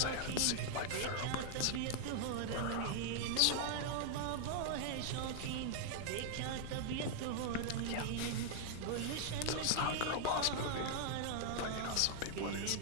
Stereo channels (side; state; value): both; different; correlation -0.01